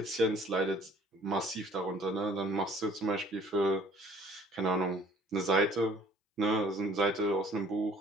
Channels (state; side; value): normal; both; correlation 0.54